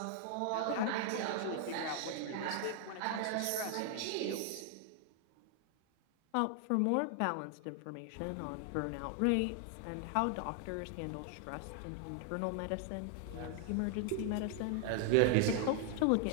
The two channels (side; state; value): both; different; correlation 0.00